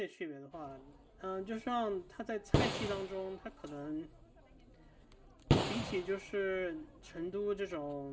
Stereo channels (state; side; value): identical; both; correlation 1.00